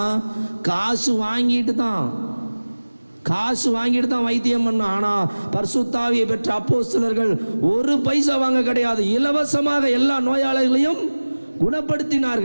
காசு வாங்கிட்டு தான் வைத்தியம் பண்ண. ஆனால் பரிசுத்த ஆவியை பெற்ற அப்போஸ்தலர்கள் ஒரு பைசா வாங்க கிடையாது, இலவசமாக எல்லா நோயாளிகளையும்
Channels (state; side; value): inverted; both; correlation -1.00